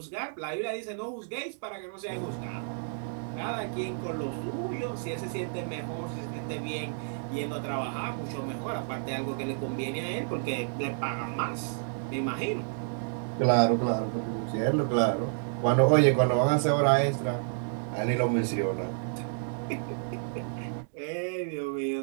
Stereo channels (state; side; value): silent; left; digital silence